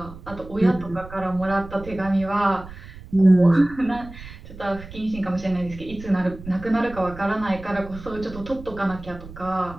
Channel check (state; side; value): noise; right; rumble, 15 dB below the sound